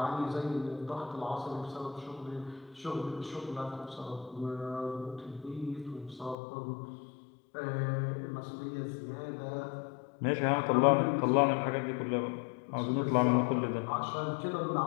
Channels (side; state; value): right; drops out; at 6.4 s